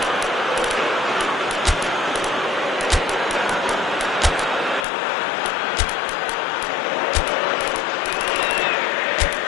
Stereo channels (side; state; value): right; drops out; at 4.9 s